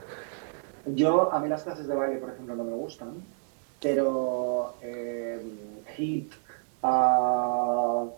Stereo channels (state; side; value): silent; left; digital silence